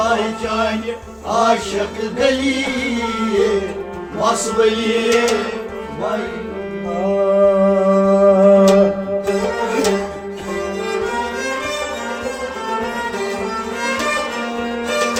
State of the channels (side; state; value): both; identical; correlation 1.00